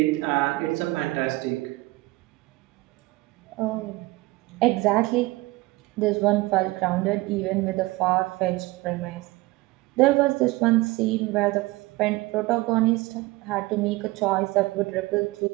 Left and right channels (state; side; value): quieter; left; 21.1 dB